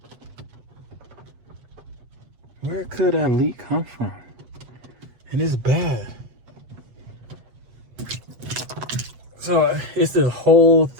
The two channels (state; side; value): late; left; 8.1 ms